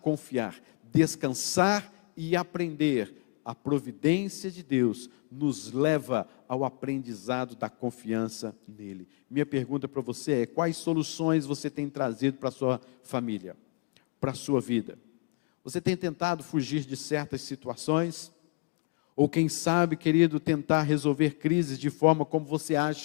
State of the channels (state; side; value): quieter; right; 30.2 dB